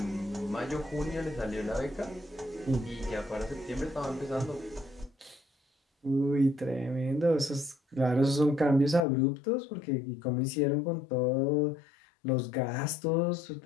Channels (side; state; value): right; drops out; at 9.0 s